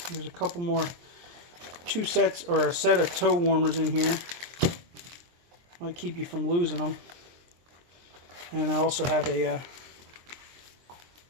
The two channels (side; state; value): left; late; 23 ms